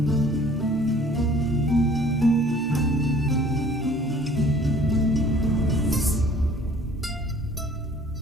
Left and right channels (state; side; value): normal; both; correlation 0.53